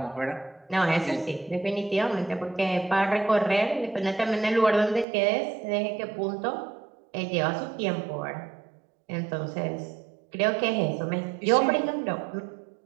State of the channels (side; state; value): left; drops out; at 5.1 s